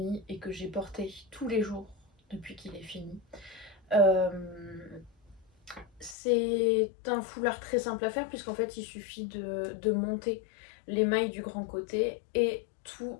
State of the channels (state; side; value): drops out; right; at 6.2 s